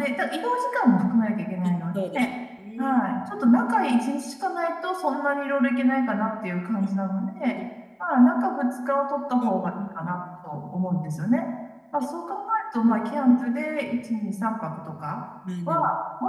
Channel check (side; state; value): both; identical; correlation 1.00